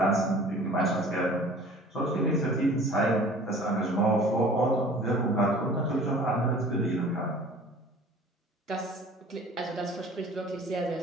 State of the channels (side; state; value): both; normal; correlation 0.47